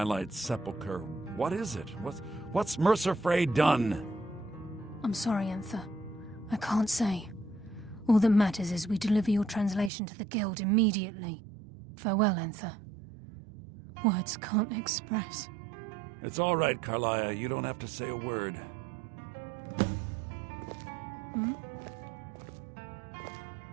Sepulchre. What is it? What's Mercer Frey done? I'm sorry, Enther. I can't say. All that matters is we deliver your translation to the guild immediately. Farewell, Enther. Words can't express. It's all right, Carlia. You don't have to say a word. Hmm?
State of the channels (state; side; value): drops out; left; at 9.9 s